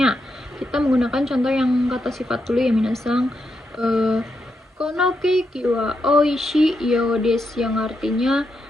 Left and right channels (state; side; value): normal; both; correlation 0.83